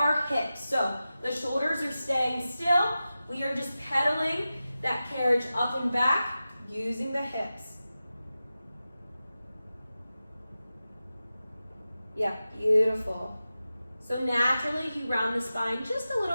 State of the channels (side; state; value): both; inverted; correlation -0.94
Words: hips. So the shoulders are staying still. We are just pedaling that carriage up and back using the hips. Yeah, beautiful. So naturally, you round the spine just a